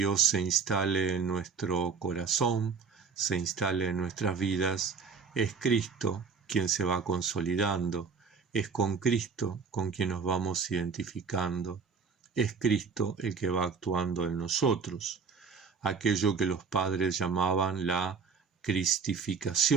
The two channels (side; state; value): left; quieter; 5.5 dB